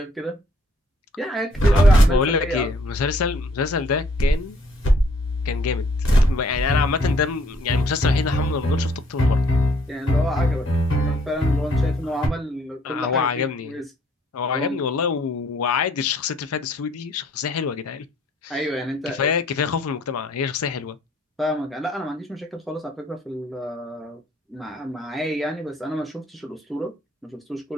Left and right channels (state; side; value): normal; both; correlation 0.63